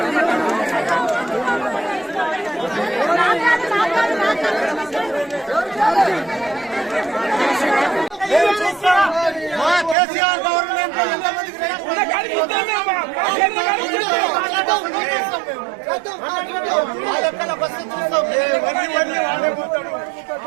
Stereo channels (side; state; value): left; drops out; at 10.0 s